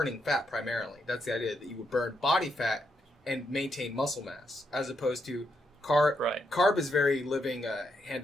fat primarily. That's the idea, that you would burn body fat and maintain muscle mass, as opposed to carb. Right. Carb is very living hand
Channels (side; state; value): both; normal; correlation 0.80